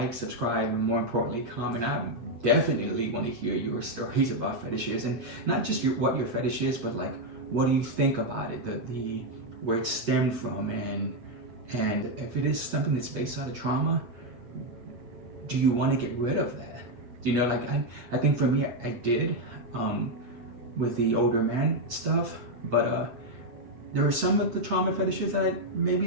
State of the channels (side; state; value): left; late; 8.4 ms